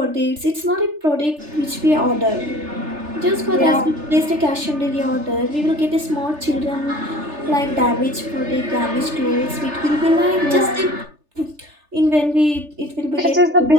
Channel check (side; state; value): left; late; 3.4 ms